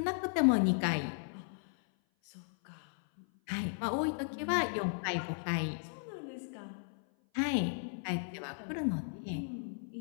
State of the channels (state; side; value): silent; right; 54 dB below the other